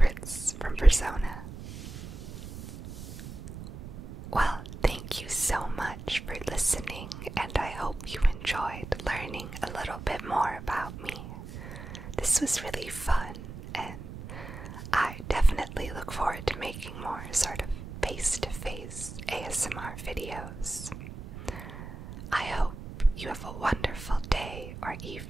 from Persona. Well, thank you so much for listening, and I hope you enjoyed learning a little bit more about me. This was really fun, and I definitely look forward to making more sort of face-to-face ASMR videos. I hope you have a wonderful day or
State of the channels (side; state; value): right; noise; rumble, 11 dB below the sound